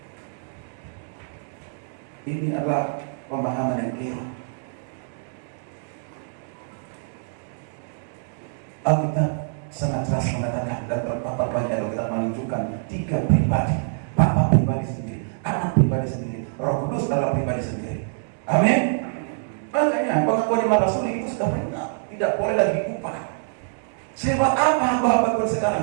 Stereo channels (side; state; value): left; silent; digital silence